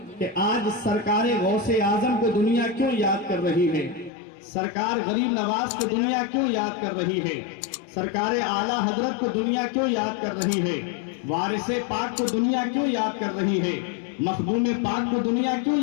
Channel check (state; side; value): drops out; right; at 4.1 s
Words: کہ آج سرکار غوث اعظم کو دنیا کیوں یاد کر رہی ہے, سرکار غریب نواز کو دنیا کیوں یاد کر رہی ہے, سرکار اعلیٰ حضرت کو دنیا کیوں یاد کر رہی ہے, وارث پاک کو دنیا کیوں یاد کر رہی ہے, مخدوم پاک کو دنیا کیوں